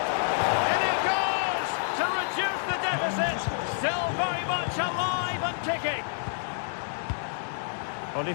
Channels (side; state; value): right; silent; 59 dB below the other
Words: And it goes to reduce the deficit. Still very much alive and kicking.